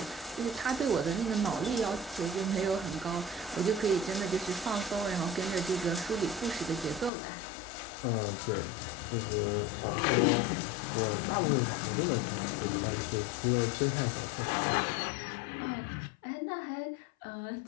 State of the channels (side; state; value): right; drops out; at 7.1 s